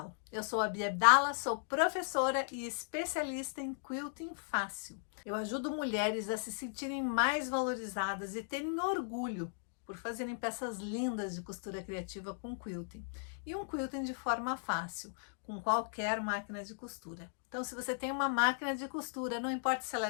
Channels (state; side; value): silent; right; digital silence